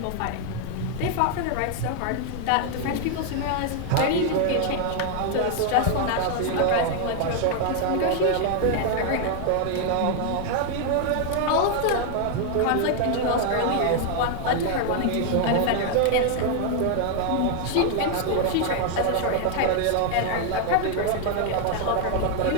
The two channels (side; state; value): both; different; correlation 0.00